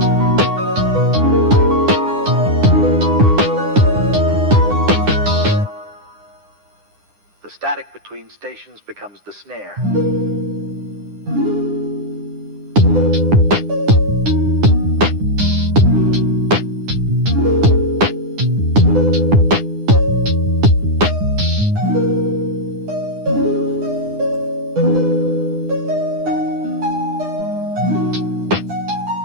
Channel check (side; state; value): left; late; 9.9 ms